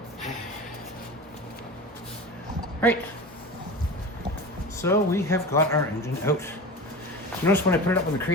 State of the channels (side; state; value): both; normal; correlation 0.31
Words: Right. So we have got our engine out. Notice when I put it up in the